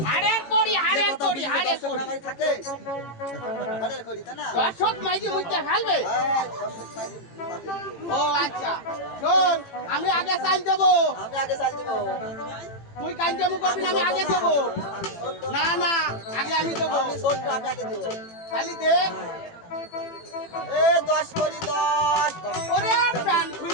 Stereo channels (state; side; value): late; right; 18 ms